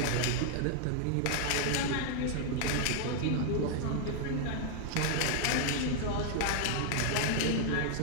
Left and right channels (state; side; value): different; both; correlation 0.00